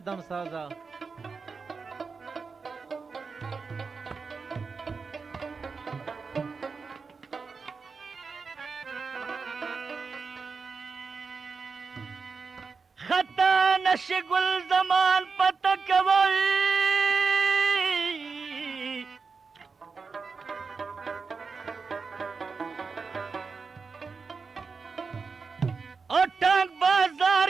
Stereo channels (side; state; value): left; quieter; 4.9 dB